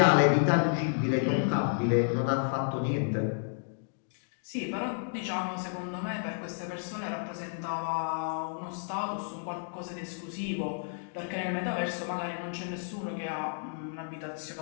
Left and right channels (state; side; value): silent; right; digital silence